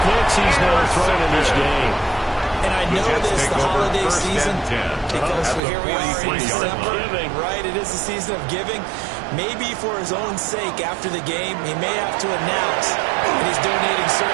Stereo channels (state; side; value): drops out; left; at 5.6 s